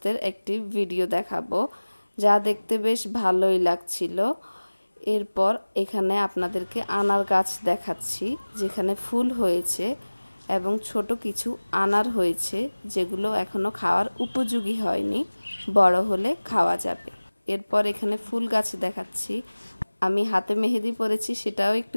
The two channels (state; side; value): inverted; both; correlation -1.00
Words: একটি ভিডিও দেখাবো, যা দেখতে বেশ ভালোই লাগছিল। এরপর এখানে আপনাদেরকে আনার গাছ দেখাচ্ছি, যেখানে ফুল হয়েছে এবং ছোট কিছু আনার হয়েছে, যেগুলো এখনো খাওয়ার উপযোগী হয়নি, বড় হলে খাওয়া যাবে। এরপর এখানে ফুল গাছ দেখাচ্ছি, আমি হাতে মেহেদি পরেছি সেটাও